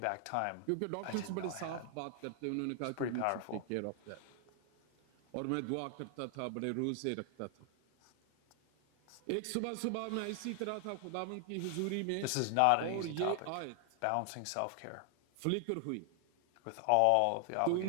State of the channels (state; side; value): different; both; correlation 0.00